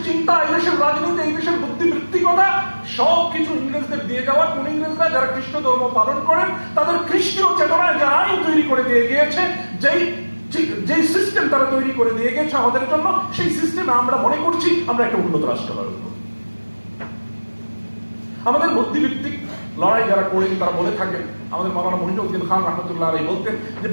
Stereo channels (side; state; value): both; inverted; correlation -1.00